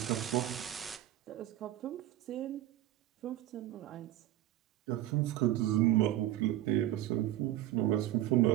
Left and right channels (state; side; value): quieter; left; 14.0 dB